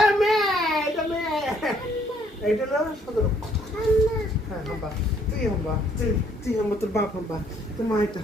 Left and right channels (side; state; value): both; normal; correlation 0.65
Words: মেয়ে, এটা মেয়ে। এটা হলো সদর, হ্যাঁ হাম্বা, তুই হাম্বা, তুই হাম্বা, তোর বাপ হাম্বা, তোর মা এটা